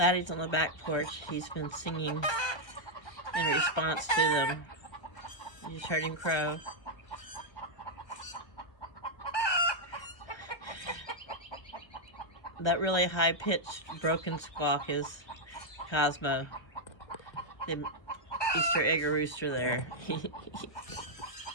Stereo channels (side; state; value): right; late; 1.2 ms